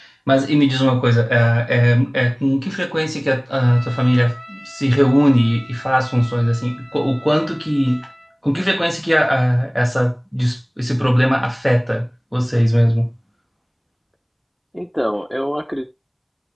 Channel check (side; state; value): both; identical; correlation 1.00